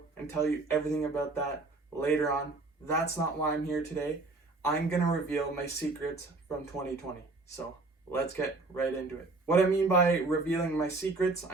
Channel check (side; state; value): left; quieter; 3.4 dB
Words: and tell you everything about that later on. That's not why I'm here today. I'm going to reveal my secrets from 2020. So let's get right into it. What I mean by revealing my secrets,